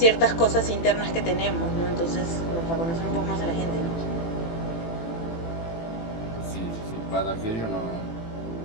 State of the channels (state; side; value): late; right; 18 ms